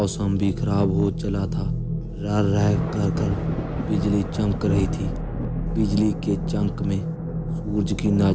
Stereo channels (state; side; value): identical; both; correlation 1.00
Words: भी खराब हो चला था। रह रह कर बिजली चमक रही थी। बिजली के चमक में सूरज की